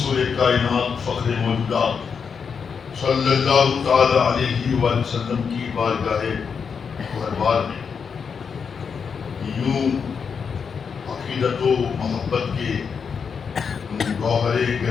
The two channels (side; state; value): right; quieter; 6.2 dB